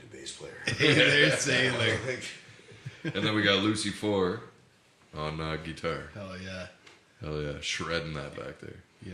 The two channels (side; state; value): both; identical; correlation 1.00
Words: a bass player. Hey there, sailor. And then we got Lucy 4 on guitar. Hell yeah. Hell yeah, shredding that back there. Yeah.